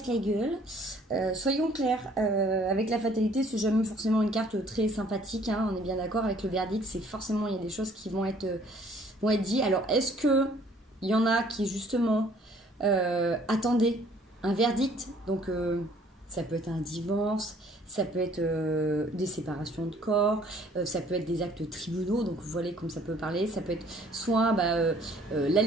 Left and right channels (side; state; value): both; normal; correlation 0.58